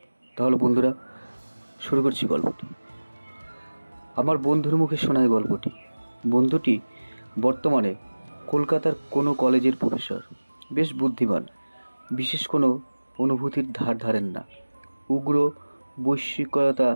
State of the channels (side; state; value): both; inverted; correlation -1.00